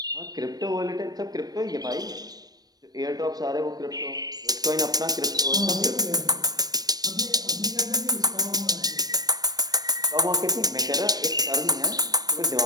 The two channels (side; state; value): left; late; 0.19 ms